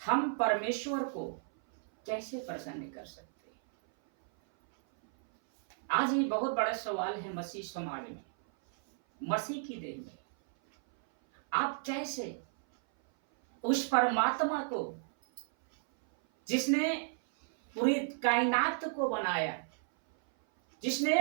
हम परमेश्वर को कैसे प्रसन्न कर सकते हैं। आज ये बहुत बड़ा सवाल है मसीह समाज में, मसीह की देह में। आप कैसे उस परमात्मा को जिसने पूरी कायनात को बनाया, जिसने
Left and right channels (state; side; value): silent; left; 56 dB below the other